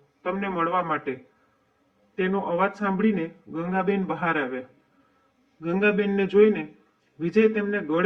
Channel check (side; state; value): both; identical; correlation 1.00